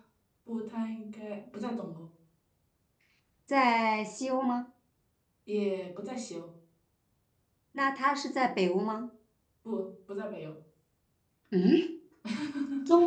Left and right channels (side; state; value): both; identical; correlation 1.00